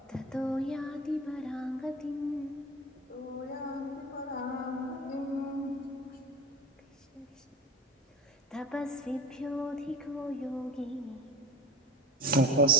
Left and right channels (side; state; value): both; normal; correlation 0.35